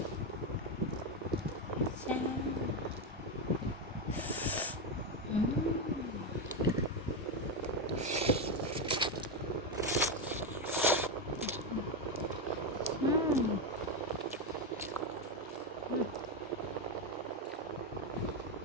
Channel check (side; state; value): both; normal; correlation 0.08